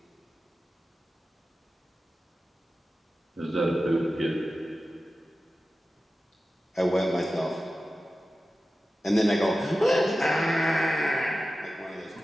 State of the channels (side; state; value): both; normal; correlation 0.94